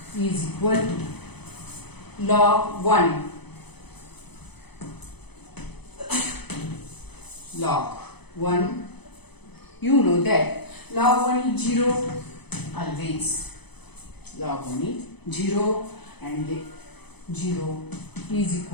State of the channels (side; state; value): right; late; 0.98 ms